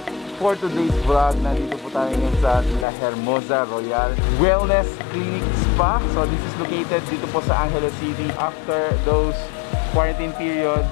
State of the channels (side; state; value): right; drops out; at 2.9 s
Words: For today's vlog, nandito po tayo ngayon sa Hermoza Royal Wellness Clinic Spa. So this is located dito po sa Angeles City. After those quarantine period,